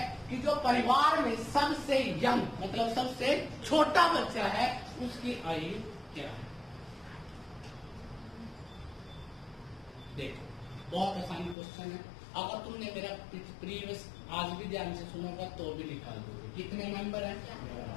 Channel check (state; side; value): drops out; right; at 11.6 s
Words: कि जो परिवार में सबसे यंग मतलब सबसे छोटा बच्चा है उसकी आयु क्या है। देखो बहुत आसान क्वेश्चन है, अगर तुमने मेरा प्रीवियस आज भी ध्यान से सुनोगा तो भी निकाल दोगे। कितने मेंबर है,